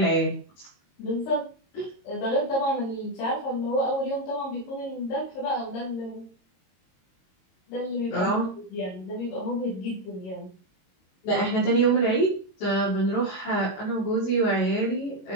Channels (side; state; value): right; late; 22 ms